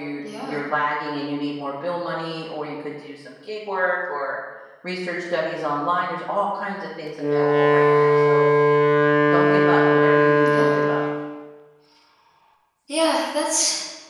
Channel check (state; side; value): identical; both; correlation 1.00